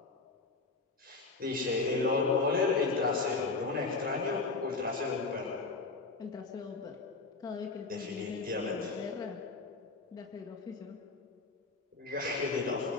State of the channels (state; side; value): quieter; right; 3.8 dB